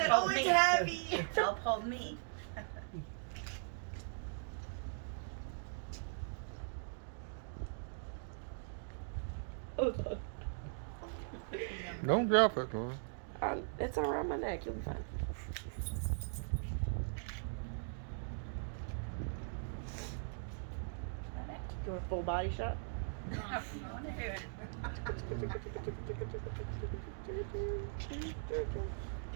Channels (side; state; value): left; silent; digital silence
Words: hold "Oh, it's me. heavy." Help hold me. Don't drop it, Lauren. It's around my neck. You'll be fine. Do a full body shot? No, you want to do it.